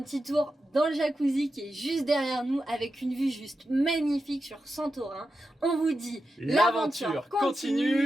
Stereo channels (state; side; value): normal; both; correlation 0.90